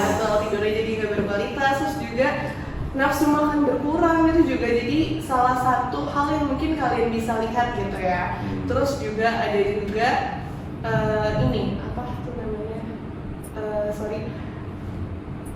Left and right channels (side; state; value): both; identical; correlation 1.00